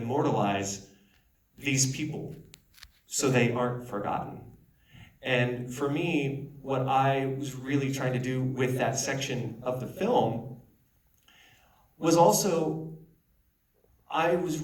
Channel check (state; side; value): identical; both; correlation 1.00